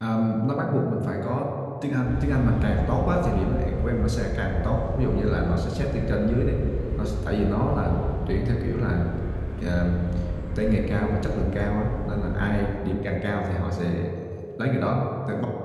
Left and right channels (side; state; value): both; identical; correlation 1.00